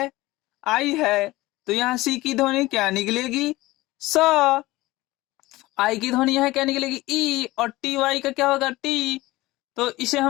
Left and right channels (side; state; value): right; quieter; 19.0 dB